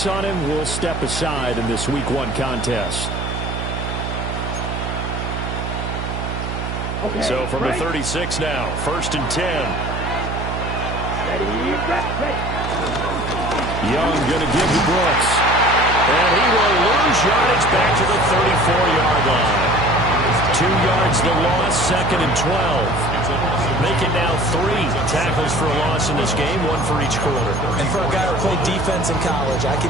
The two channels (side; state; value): right; noise; hum, 5 dB below the sound